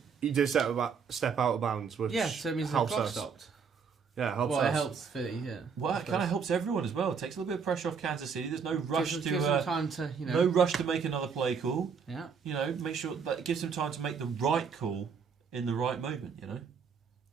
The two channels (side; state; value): left; quieter; 6.1 dB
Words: he did step out of bounds, which So it means the helps clock us. stopped. Yeah, it helps Well, us. it helps Philly, yeah. Well, it kind of helps everyone as well. It takes a little bit of pressure off Kansas City. There's no rush Gives them time to, no rush to make another play call. Yeah. Make sure that it gives them time to make the right call in the right moment.